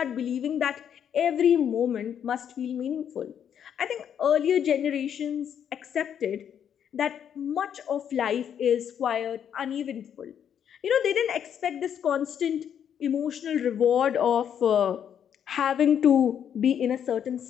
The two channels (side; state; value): right; quieter; 8.8 dB